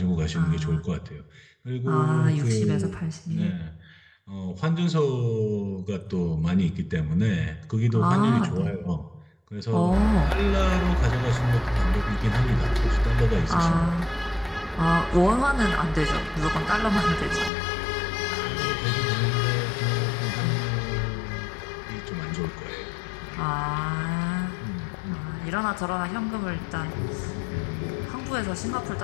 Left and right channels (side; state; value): right; drops out; at 17.5 s